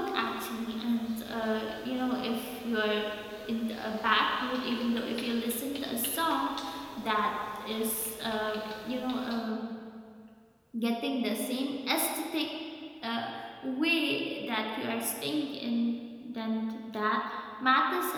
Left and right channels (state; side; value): identical; both; correlation 1.00